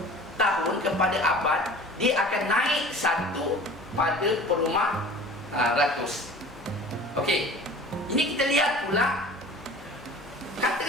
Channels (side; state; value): both; normal; correlation 0.43